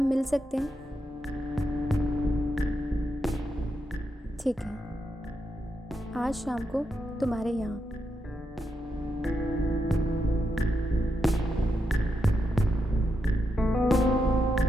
मिल सकते हैं? ठीक है, आज शाम को तुम्हारे यहाँ।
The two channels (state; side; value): normal; both; correlation 0.84